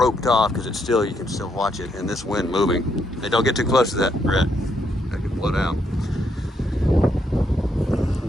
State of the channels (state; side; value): normal; both; correlation 0.76